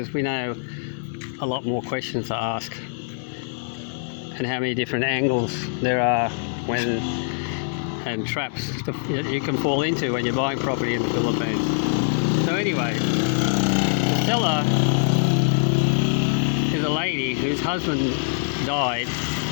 we know a lot more questions to ask and how many different angles there are and traps that you can fall into when you're buying property in the Philippines. So anyway, the seller is a lady whose husband died,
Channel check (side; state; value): right; silent; 59 dB below the other